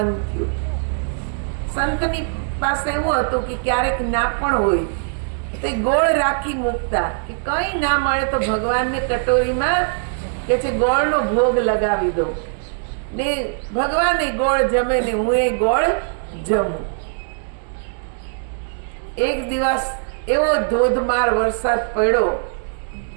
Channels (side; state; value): left; silent; 65 dB below the other